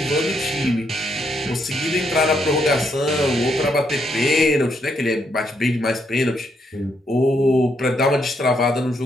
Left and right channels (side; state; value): both; normal; correlation 0.76